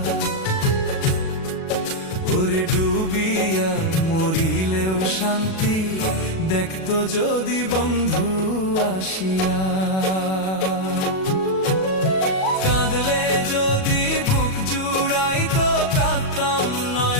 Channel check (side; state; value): right; late; 37 ms